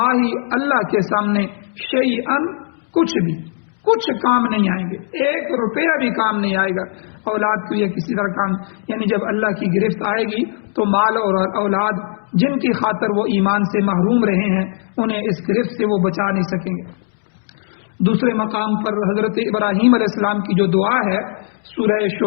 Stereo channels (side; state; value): right; silent; 60 dB below the other